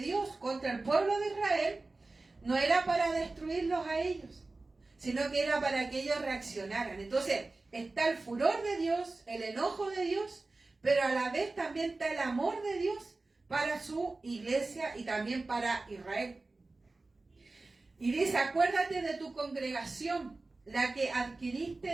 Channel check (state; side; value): quieter; left; 3.4 dB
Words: contra el pueblo de Israel no era para destruirlos a ellos, sino que era para que ellos reaccionaran. Entonces está el furor de Dios, el enojo de Dios, pero a la vez también está el amor de Dios para su iglesia y también para Israel. Y dice, acuérdate de tu congregación, la que